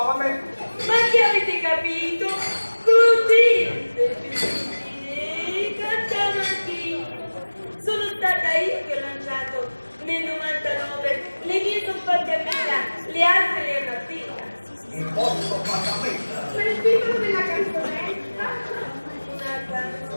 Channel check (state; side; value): inverted; both; correlation -1.00